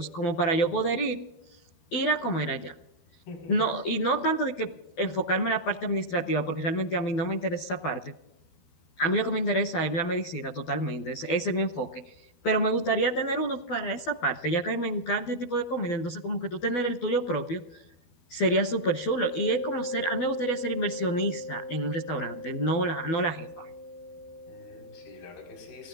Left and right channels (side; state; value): right; late; 12 ms